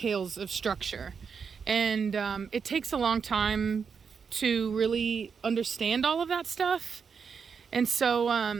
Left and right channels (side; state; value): left; quieter; 6.1 dB